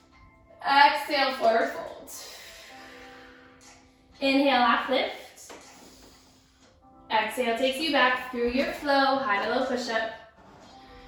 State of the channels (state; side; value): identical; both; correlation 1.00